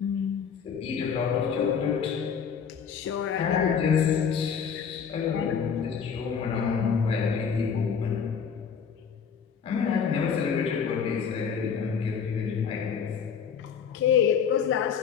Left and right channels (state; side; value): quieter; right; 6.9 dB